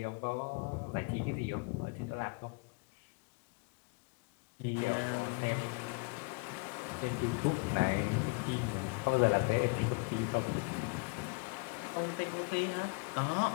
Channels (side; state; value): right; quieter; 30.9 dB